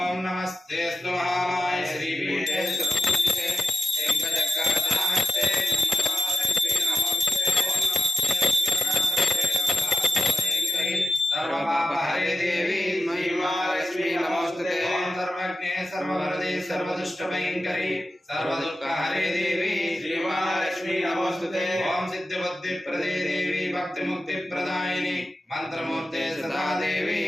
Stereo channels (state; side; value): normal; both; correlation 0.92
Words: नमस्तेस्तु महामाय श्रीपीठे सुपूजिते शङ्खचक्रगदाहस्ते सर्वपापहरे देवी महिमालक्ष्मी नमोस्तुते ओम सर्वज्ञे सर्ववरदे सर्वदुष्टभयङ्करी सर्वदुःखहरे देवी श्रीमहालक्ष्मी नमोस्तुते ओम सिद्धिबुद्धिप्रदे देवी भक्तिमुक्तिप्रदायिनी मंत्रमूर्ते सदा देवी